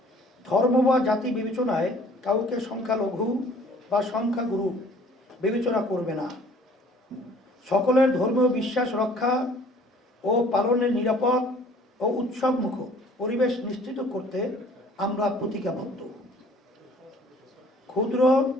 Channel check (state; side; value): normal; both; correlation 0.55